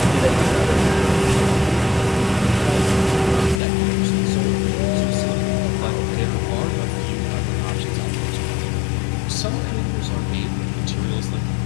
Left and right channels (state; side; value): drops out; right; at 3.6 s